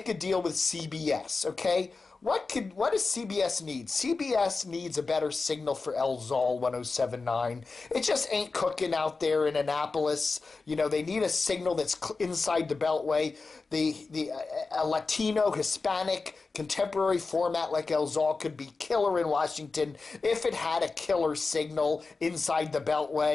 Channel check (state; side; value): quieter; right; 4.1 dB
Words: a deal with CBS, okay? What does CBS need? CBS needs a better signal for LZOL 107.9. It just ain't cooking out there in Annapolis. They need a signal that's inside the Beltway. A Latino, Hispanic, contemporary format like LZOL could be killer in Washington if it had a killer signal inside the